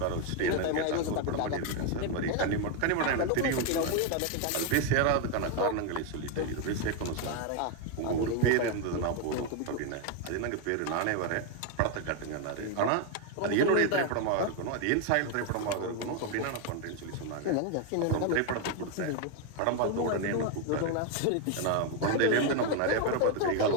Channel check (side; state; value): both; different; correlation 0.01